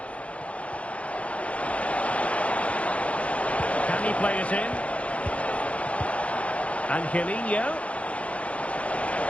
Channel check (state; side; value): late; right; 0.063 ms